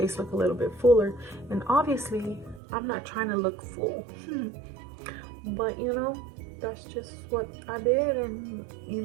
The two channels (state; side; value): drops out; left; at 2.6 s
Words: look a little bit fuller. And obviously, I'm not trying to look full. But, you know, that's just what I did. And, you